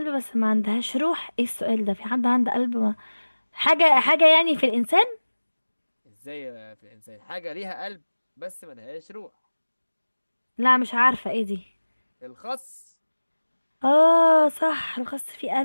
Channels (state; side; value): inverted; both; correlation -1.00